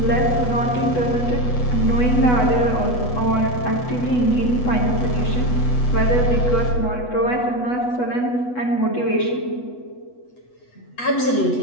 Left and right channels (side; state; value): right; late; 8.1 ms